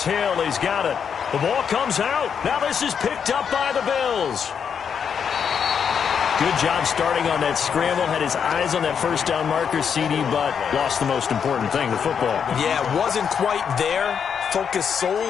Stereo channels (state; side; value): quieter; right; 7.2 dB